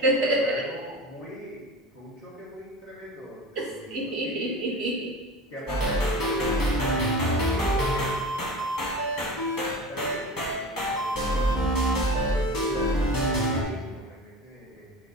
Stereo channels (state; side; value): normal; both; correlation 0.33